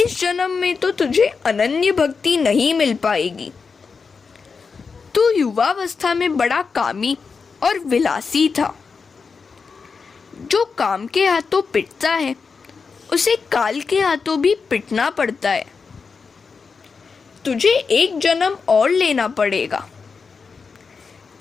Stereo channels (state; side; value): quieter; right; 5.1 dB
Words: जन्म में तो तुझे अनन्य भक्ति नहीं मिल पाएगी। तू युवावस्था में बड़ा कामी और विलासी था। जो काम के हाथों पिटता है उसे काल के हाथों भी पिटना पड़ता है। तुझे एक जन्म और लेना पड़ेगा।